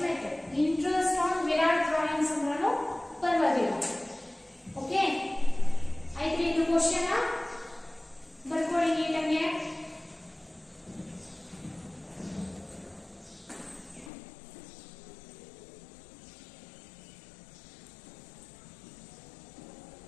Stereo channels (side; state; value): right; drops out; at 14.1 s